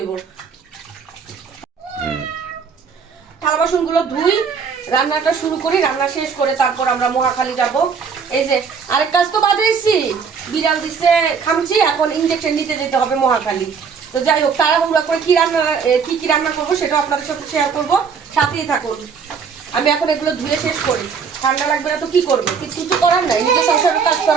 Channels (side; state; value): left; quieter; 6.1 dB